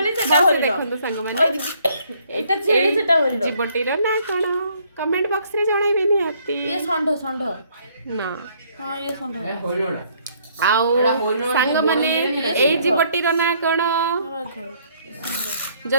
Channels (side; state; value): both; inverted; correlation -0.65